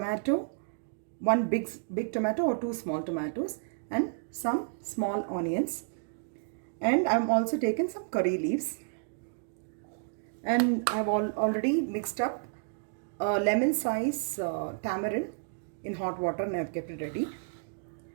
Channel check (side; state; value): left; silent; digital silence